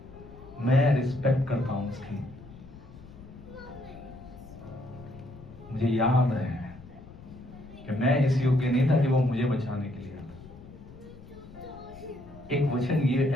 मैं रिस्पेक्ट करता हूं उसकी। मुझे याद है कि मैं इस योग्य नहीं था कि वो मुझे बचाने के लिए आता। एक वचन, ये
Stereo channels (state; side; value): noise; left; rumble, 18 dB below the sound